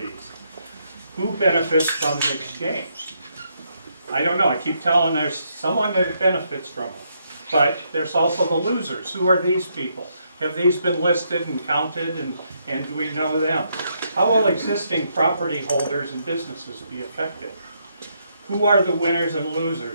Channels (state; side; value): inverted; both; correlation -0.76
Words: Who benefits from the exchange? I don't know. I keep telling there's someone that benefits from them. But there's also the losers. Who are these people? Have these been listed and counted, and do we know them? How will existing property holders and businesses be affected? Who are the winners and